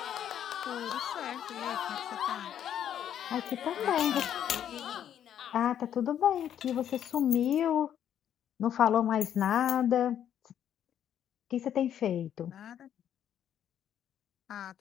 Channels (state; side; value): quieter; right; 9.9 dB